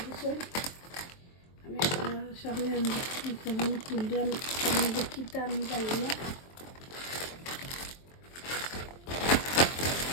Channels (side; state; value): right; late; 23 ms